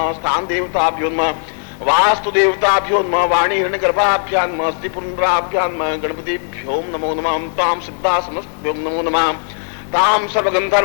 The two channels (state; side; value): silent; right; digital silence